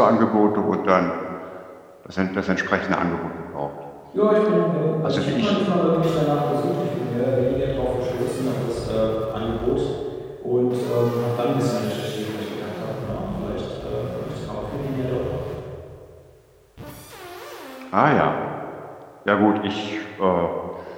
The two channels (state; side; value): identical; both; correlation 1.00